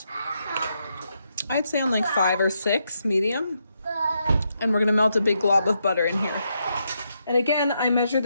I'd say on like 5 or 6, medium. And we're gonna melt a big glob of butter in here. And again, I measure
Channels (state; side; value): inverted; both; correlation -0.81